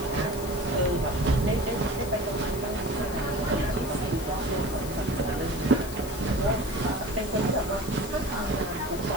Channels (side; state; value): left; noise; hiss, 13 dB below the sound